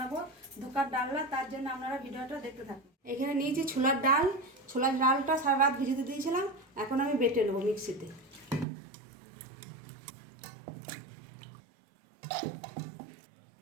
ধোকার ডালনা। তার জন্য আপনারা ভিডিওটা দেখতে থাকুন। এখানে নিয়েছি ছোলার ডাল। ছোলার ডালটা সারা রাত ভিজিয়ে দিয়েছিলাম, এখন আমি বেটে নেবো মিক্সিতে।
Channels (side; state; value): left; drops out; at 8.7 s